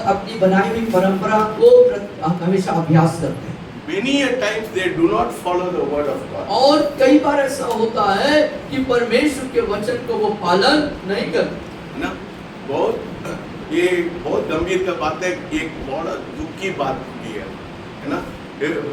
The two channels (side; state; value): both; identical; correlation 1.00